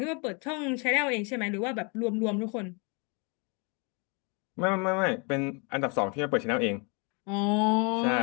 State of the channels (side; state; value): right; quieter; 33.3 dB